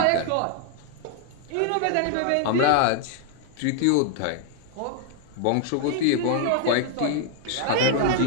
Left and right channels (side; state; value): both; different; correlation 0.00